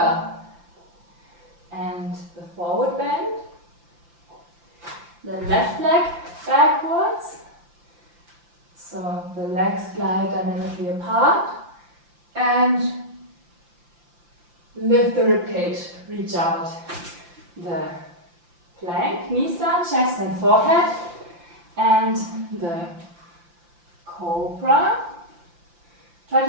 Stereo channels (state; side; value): late; left; 5.8 ms